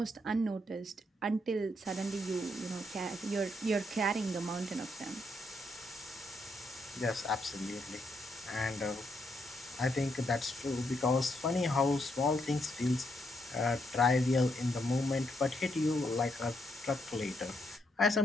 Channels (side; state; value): both; normal; correlation 0.77